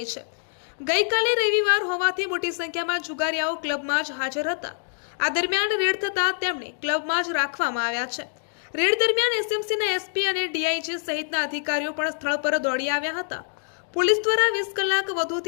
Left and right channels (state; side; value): silent; right; digital silence